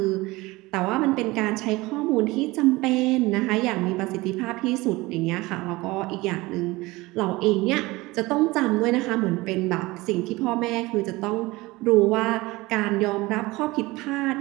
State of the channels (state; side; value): quieter; left; 21.2 dB